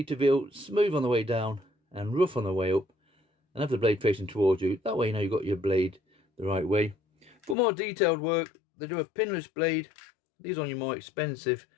to feel smooth on the way down and rough on the way up, and have the blade facing towards you. That way you know you've got your blade the right way. For more detailed work, they do a pinless blade. These are on your more expensive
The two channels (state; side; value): drops out; right; at 7.6 s